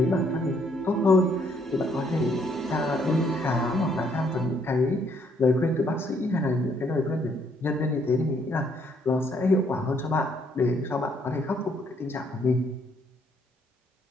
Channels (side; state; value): both; normal; correlation 0.68